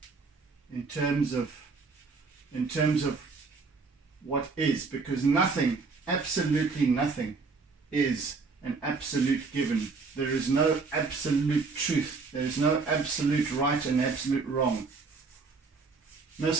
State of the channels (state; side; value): quieter; left; 4.5 dB